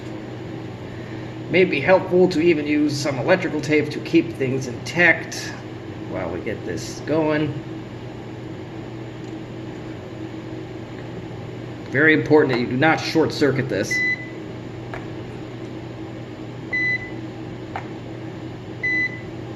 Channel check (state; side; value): identical; both; correlation 1.00